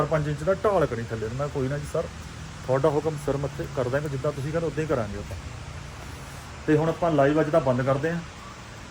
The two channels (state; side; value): identical; both; correlation 1.00